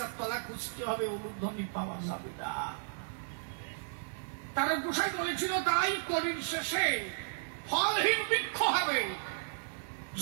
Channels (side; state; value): left; silent; digital silence